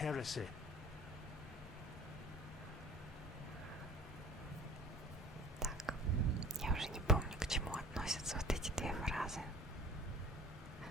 Так, я уже не помню, к чему относятся вот эти две фразы.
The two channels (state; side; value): normal; both; correlation 0.46